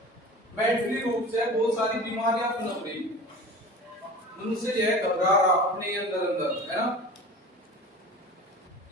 मेंटली रूप से बहुत सारी बीमारियां पनप रही। मनुष्य जो है घबरा रहा अपने अंदर अंदर, है ना।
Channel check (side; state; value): both; normal; correlation 0.37